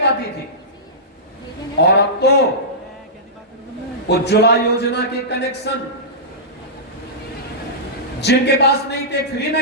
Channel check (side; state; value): both; normal; correlation -0.17